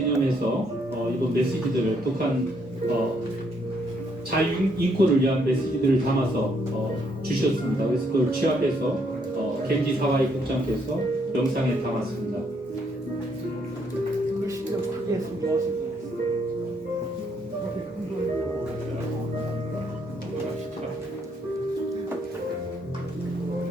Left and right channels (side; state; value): both; normal; correlation 0.71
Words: 이번 메시지들을 북한 자유 인권을 위한 메시지들을 담아서 주셨습니다. 그래서 그걸 취합해서 겐지 사와이 국장께서 영상에 담았습니다.